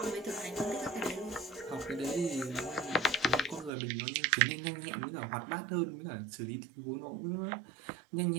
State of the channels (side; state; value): left; drops out; at 3.7 s